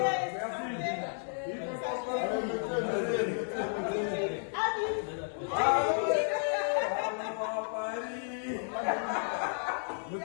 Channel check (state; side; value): silent; right; digital silence